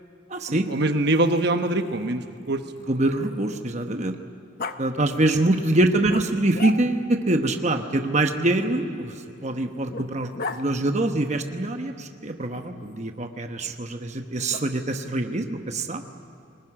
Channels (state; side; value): normal; both; correlation 0.56